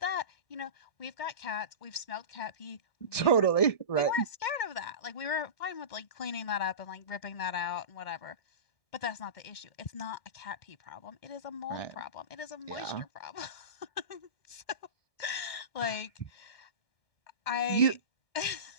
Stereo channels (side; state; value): right; late; 1.6 ms